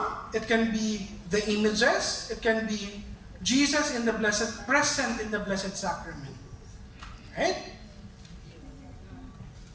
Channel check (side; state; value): both; identical; correlation 1.00